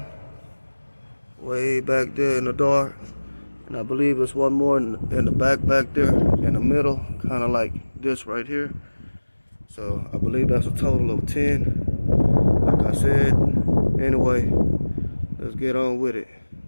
way back there in the dark. And I believe it's one more in the back there, in the middle, kind of like this right here. So I believe that's a total of 10. Like I said, anyway, let's get on with it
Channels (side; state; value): both; inverted; correlation -1.00